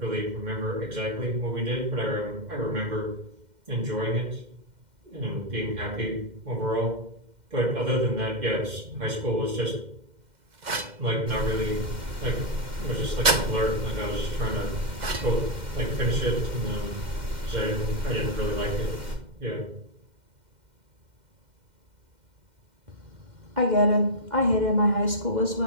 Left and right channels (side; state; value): left; late; 2.1 ms